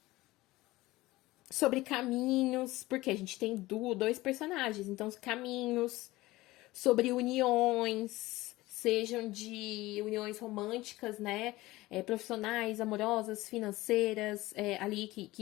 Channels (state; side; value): quieter; right; 18.8 dB